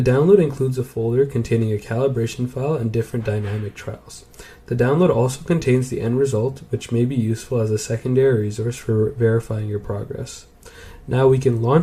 download includes a folder containing a calibration file and different dynamic trials. The download also contains the end result, which may be useful as a secondary resource for verifying your progress. Now we can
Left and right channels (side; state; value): both; identical; correlation 1.00